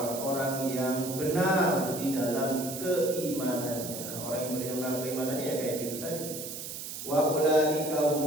yang benar di dalam keimanannya. Orang yang benar keimanannya ya kayak gitu tadi. Wa ulaika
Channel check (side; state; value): right; noise; hiss, 8 dB below the sound